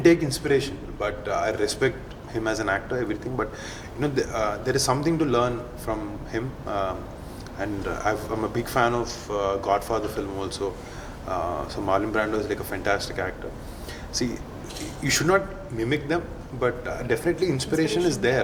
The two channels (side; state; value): both; identical; correlation 1.00